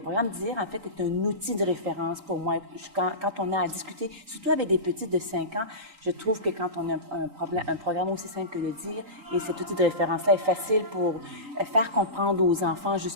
programme DIR, en fait, est un outil de référence pour moi. Quand on a à discuter, surtout avec des petits de 5 ans, je trouve que quand on a un programme aussi simple que le DIR, et cet outil de référence-là est facile pour faire comprendre aux enfants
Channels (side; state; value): left; late; 3.9 ms